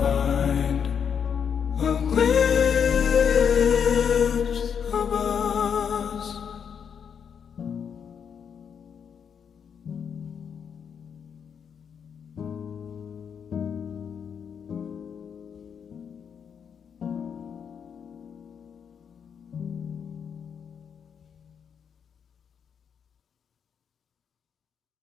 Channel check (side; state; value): right; quieter; 7.3 dB